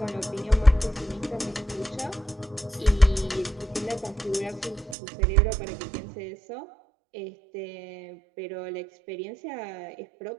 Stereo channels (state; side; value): drops out; left; at 5.0 s